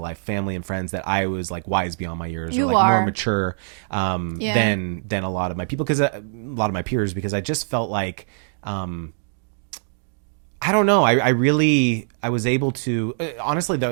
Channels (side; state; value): left; silent; digital silence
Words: family and friends, that I was like wise beyond my years, or like more mature, than a lot of my people, because a lot of my peers, because I just felt like, I don't know. I was able to, honestly,